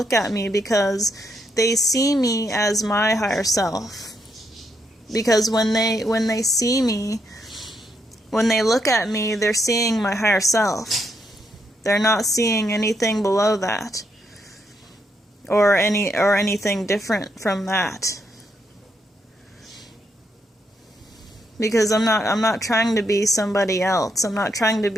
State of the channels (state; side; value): normal; both; correlation 0.79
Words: at me because they see me as my higher self. Because when they see me, when they look at me, they're seeing my higher self. They're not seeing anything below that, or anything different from that. Because I'm not trying to be somebody else. I'm not trying to